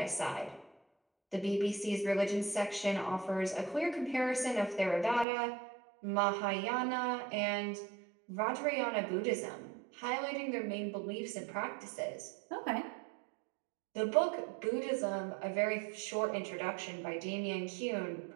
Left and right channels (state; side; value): drops out; left; at 5.2 s